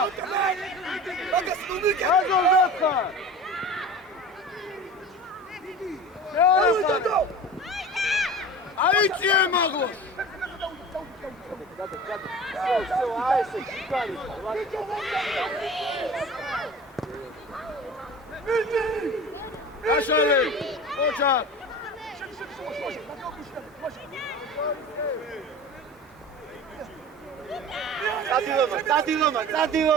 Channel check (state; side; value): normal; both; correlation 0.36